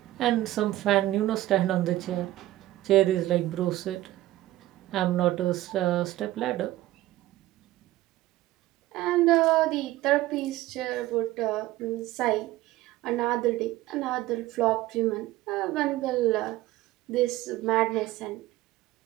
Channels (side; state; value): left; quieter; 16.1 dB